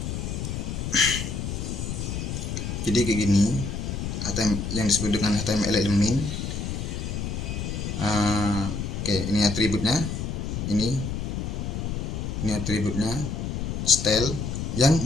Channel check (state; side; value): noise; left; rumble, 3 dB below the sound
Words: Jadi kayak gini yang disebut dengan HTML elemen. Oke, ini atributnya, ini atributnya style yang